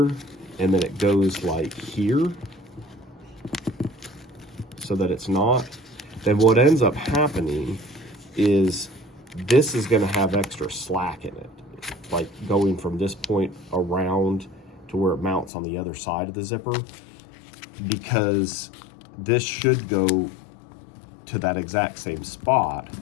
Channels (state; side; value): drops out; right; at 15.5 s